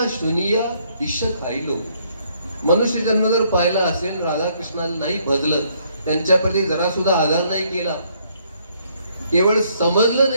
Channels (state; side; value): inverted; both; correlation -0.68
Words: शुनिया विष खाईलो. मनुष्य जन्म जर पाहिला असेल, राधा कृष्णाला नाही भजलं, त्यांच्याप्रती जरा सुद्धा आधार नाही केला, केवळ समजलं